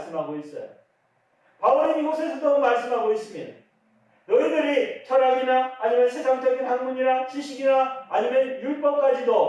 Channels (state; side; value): identical; both; correlation 1.00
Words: 있어요. 바울은 이곳에서도 말씀하고 있습니다. 너희들이 철학이나 아니면 세상적인 학문이나 지식이나 아니면